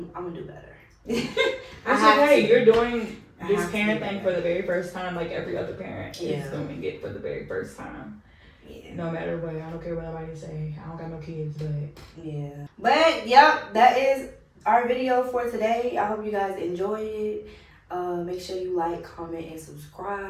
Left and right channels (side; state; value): both; identical; correlation 1.00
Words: gonna do better. That's okay. You're doing this parent thing for the very first time, like every other parent is doing it for the very first time. Yeah. No matter what, I don't care what nobody say. I don't got no kids, but yeah. But yep, that is our video for today. I hope you guys enjoyed it. Make sure you like, comment, and